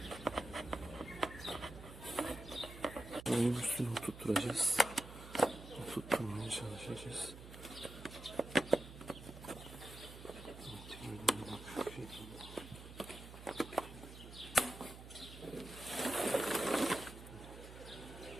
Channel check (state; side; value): noise; right; hum, 14 dB below the sound